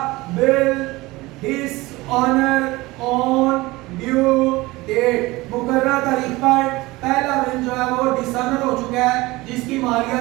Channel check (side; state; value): left; quieter; 20.8 dB